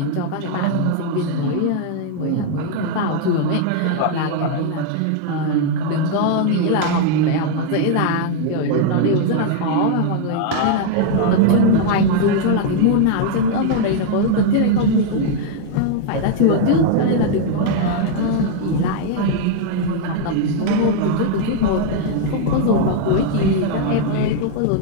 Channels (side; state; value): both; different; correlation 0.00